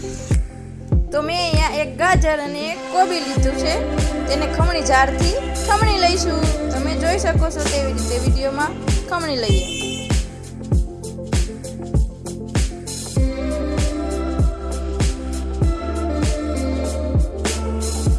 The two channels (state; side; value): identical; both; correlation 1.00